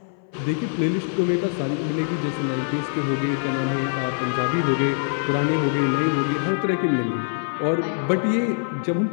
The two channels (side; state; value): right; silent; 60 dB below the other